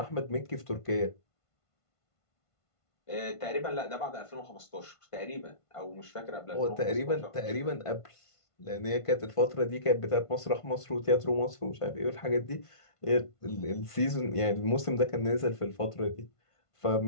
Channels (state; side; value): late; right; 1.5 ms